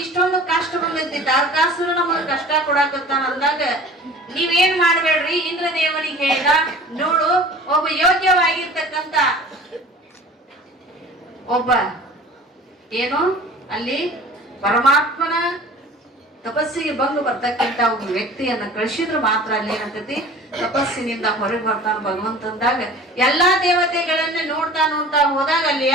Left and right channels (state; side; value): normal; both; correlation 0.43